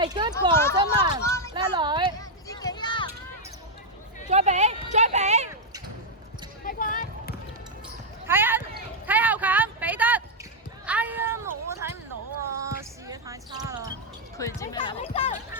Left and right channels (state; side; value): normal; both; correlation -0.02